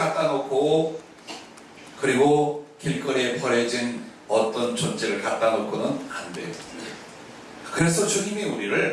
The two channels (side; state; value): both; identical; correlation 1.00